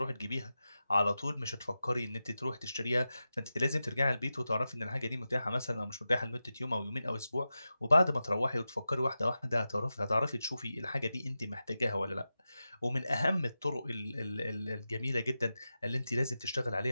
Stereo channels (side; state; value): both; inverted; correlation -0.92